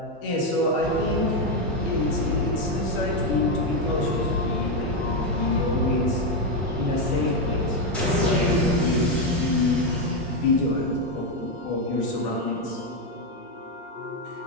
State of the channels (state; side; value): normal; both; correlation 0.05